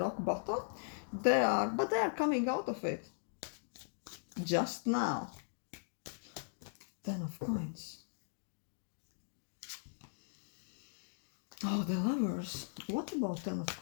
bottom. But they are coming out of it. Just now. 10 of Coins. Oh, the Lovers. What about 10 of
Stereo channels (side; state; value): right; silent; digital silence